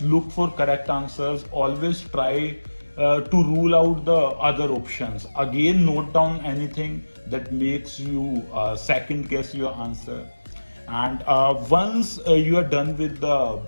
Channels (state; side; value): inverted; both; correlation -1.00